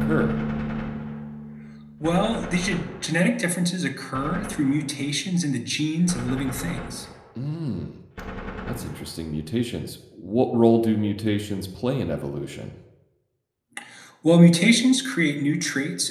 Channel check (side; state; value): both; identical; correlation 1.00